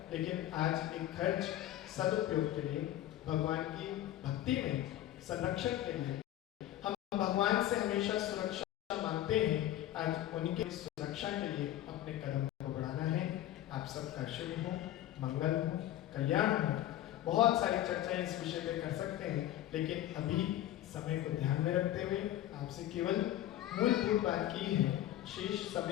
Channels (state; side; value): quieter; right; 13.4 dB